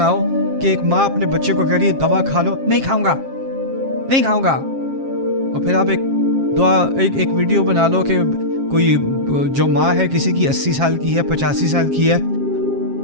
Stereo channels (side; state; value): left; late; 7.4 ms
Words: کہ ایک ماں اپنے بچے کو کہہ رہی ہے دوا کھا لو، نہیں کھاؤں گا، نہیں کھاؤں گا، اور پھر آپ ایک ویڈیو بنا لو کہ کوئی جو ماں ہے کسی کی 80 سال کی ہے، 85 سال کی ہے،